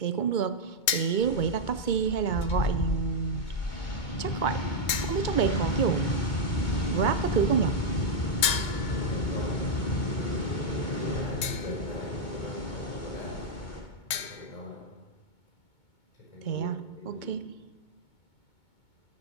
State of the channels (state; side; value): late; right; 2.2 ms